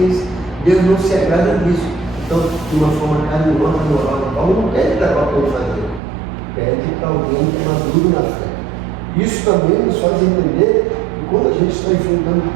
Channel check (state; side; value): drops out; left; at 6.0 s